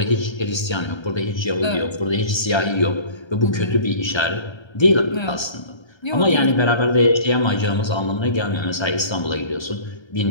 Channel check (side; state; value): right; late; 1.3 ms